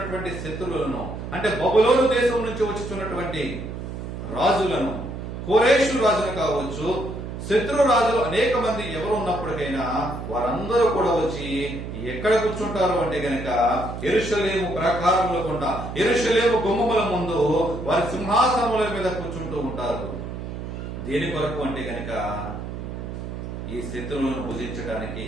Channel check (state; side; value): noise; right; hum, 7 dB below the sound